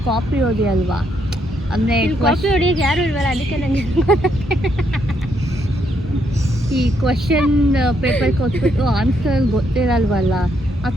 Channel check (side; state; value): both; normal; correlation 0.75